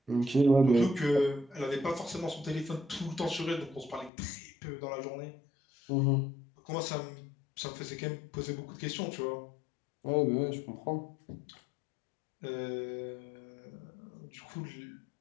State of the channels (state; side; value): drops out; right; at 4.1 s